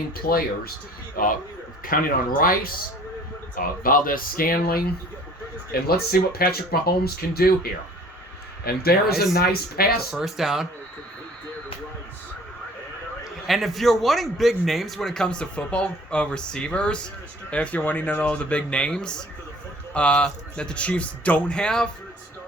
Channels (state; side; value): normal; both; correlation 0.51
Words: players, counting on Rice, Valdez-Scantling, and let's see what Patrick Mahomes can do here. And there is a nice pass. First down. And if you're wanting big names when it comes to football receivers, if you're wanting to know the big names that the Chiefs don't have,